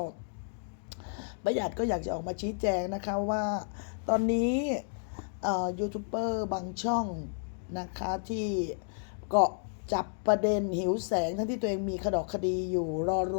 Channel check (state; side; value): silent; right; digital silence